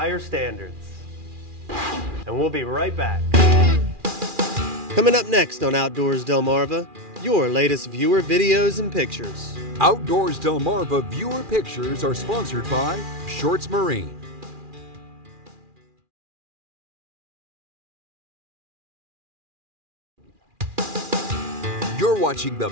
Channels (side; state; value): left; late; 2.4 ms